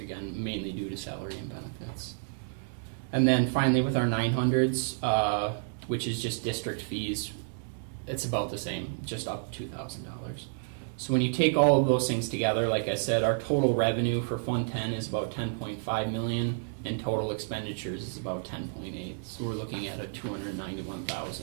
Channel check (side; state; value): left; silent; digital silence